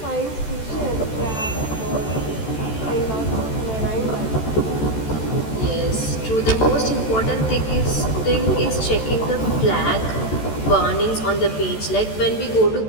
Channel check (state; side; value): late; right; 14 ms